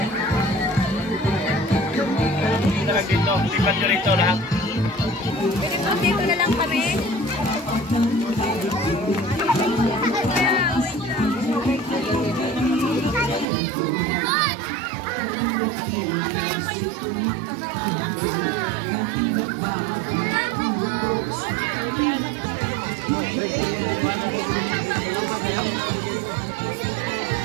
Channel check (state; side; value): drops out; left; at 13.5 s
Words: Dito, lipat nyo rito lahat. Dito na lang kami.